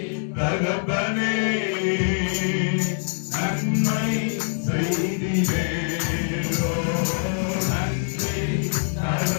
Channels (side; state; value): right; silent; 63 dB below the other